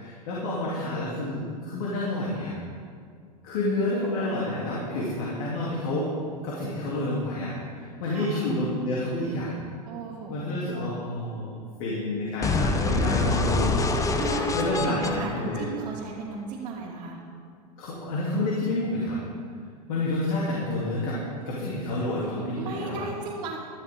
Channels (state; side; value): normal; both; correlation 0.12